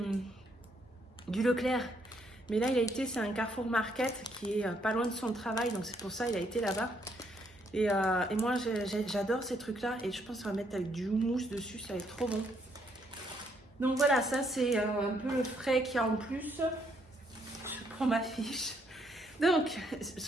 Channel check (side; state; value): both; normal; correlation 0.72